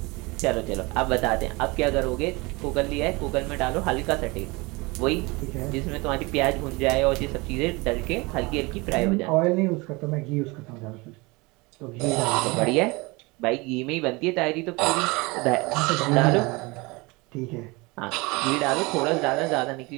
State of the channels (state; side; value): quieter; left; 25.1 dB